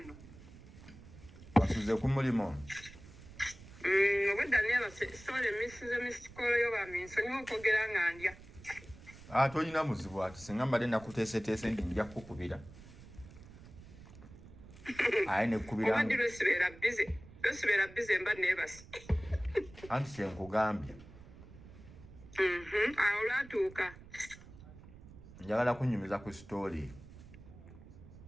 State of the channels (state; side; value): noise; right; rumble, 18 dB below the sound